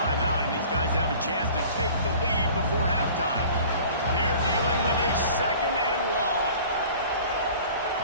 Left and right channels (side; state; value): both; inverted; correlation -0.46